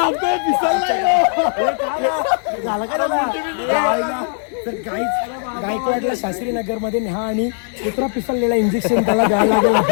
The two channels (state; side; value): silent; right; 65 dB below the other